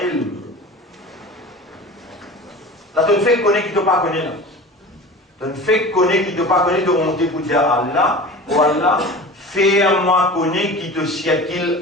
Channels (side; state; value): both; normal; correlation 0.36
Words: ilm. Là, tu ne fais connaître qui ne te pas connaître. Tu ne fais connaître qui ne te pas connaître, de monter pour dire Allah, ou Allah, fais-moi connaître qui te siècle